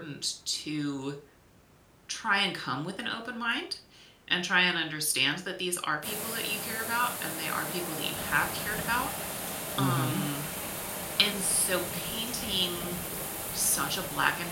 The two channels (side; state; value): both; identical; correlation 1.00